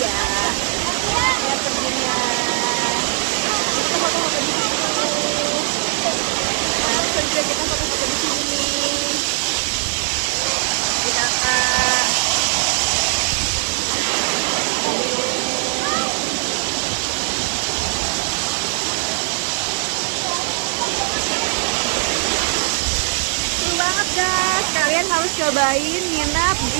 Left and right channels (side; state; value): left; silent; digital silence